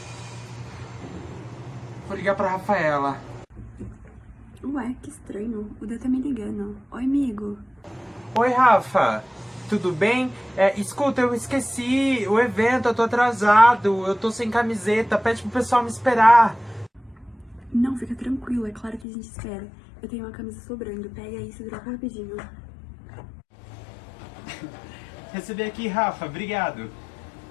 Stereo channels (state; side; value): drops out; right; at 19.1 s